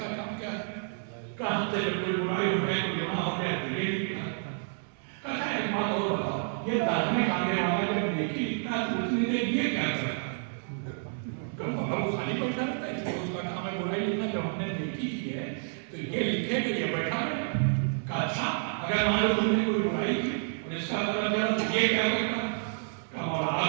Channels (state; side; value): silent; left; digital silence